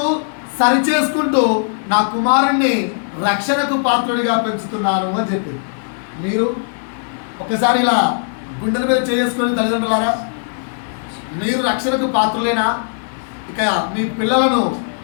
సరిచేసుకుంటూ నా కుమారుణ్ణి రక్షణకు పాత్రుడిగా పెంచుతున్నాను అని చెప్పి, మీరు ఒకసారి ఇలా గుండెల మీద చేసుకొని తల్లిదండ్రులారా, మీరు రక్షణకు పాత్రులేనా? ఇక మీ పిల్లలను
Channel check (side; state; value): right; silent; 67 dB below the other